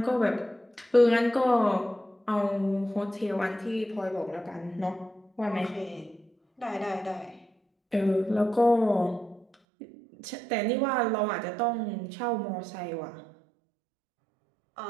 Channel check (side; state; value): left; drops out; at 9.5 s